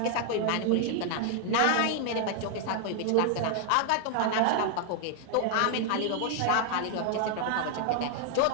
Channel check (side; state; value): both; different; correlation 0.00